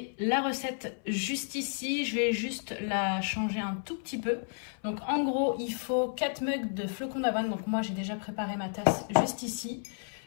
la recette juste ici, je vais juste la changer un tout petit peu. Donc en gros, il faut 4 mugs de flocons d'avoine, donc moi j'ai déjà préparé ma tasse juste ici.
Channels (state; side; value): silent; right; 57 dB below the other